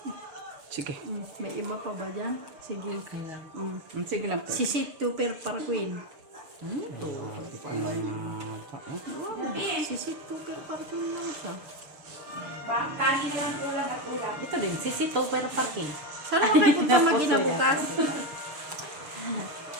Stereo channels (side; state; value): left; late; 6.7 ms